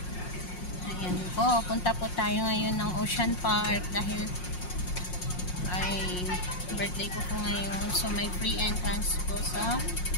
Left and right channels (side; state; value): right; late; 5.6 ms